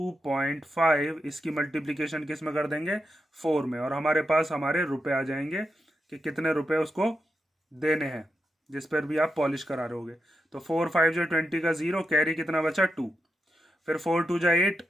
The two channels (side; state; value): both; normal; correlation 0.85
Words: इसकी मल्टीप्लीकेशन किस में कर देंगे, 4 में, और हमारे पास हमारे रुपए आ जाएंगे कि कितने रुपए उसको देने हैं जिस पर भी आप पॉलिश करा रहे होगे। तो 4 5 जो 20 का 0, कैरी कितना बचा 2, फिर 4 2 जा 8,